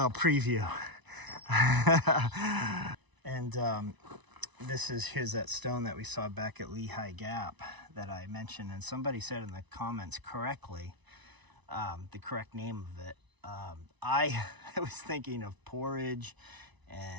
preview. And here's that stone that we saw back at Lehigh Gap that I mentioned. And somebody said in the comments correctly, the correct name of it. I was thinking of porridge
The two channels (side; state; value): left; late; 1.0 ms